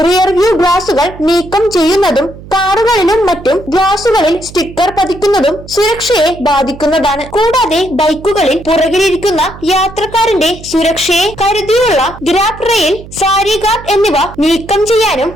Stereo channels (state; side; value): noise; right; hum, 17 dB below the sound